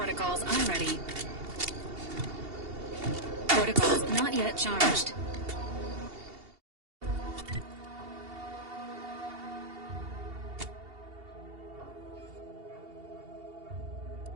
unready. Protocols not yet charged.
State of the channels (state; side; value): late; left; 2.8 ms